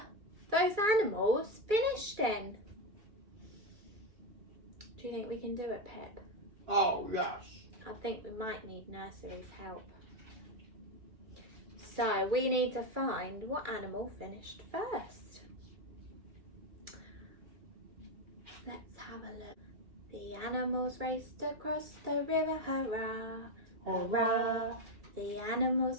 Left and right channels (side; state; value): left; late; 2.3 ms